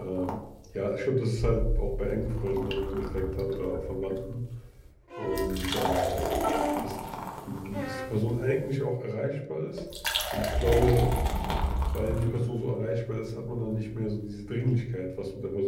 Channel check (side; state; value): both; identical; correlation 1.00